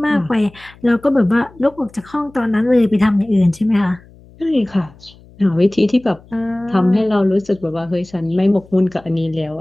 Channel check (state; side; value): noise; left; hum, 25 dB below the sound